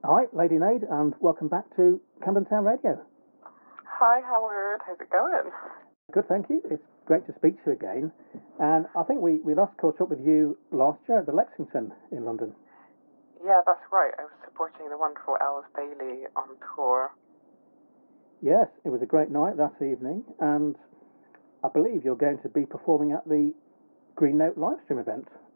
Hi, Lady Nade, and welcome back to Camden Town Radio. Hi, Howard. How's it going? Good, thank you. It's great to speak to you again. And I think we last caught up with you last year at the Lexington in London. Yeah, that's right. I was supporting the wonderful Els Bailey on tour. Yes, it was a great night that evening, and I believe you're going to be performing at the Green Note Livestream event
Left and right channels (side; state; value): both; inverted; correlation -1.00